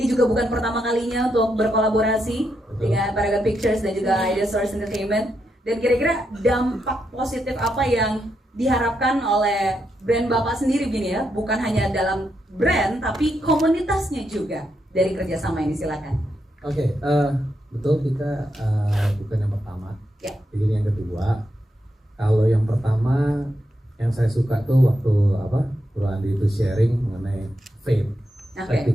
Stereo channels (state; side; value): normal; both; correlation 0.82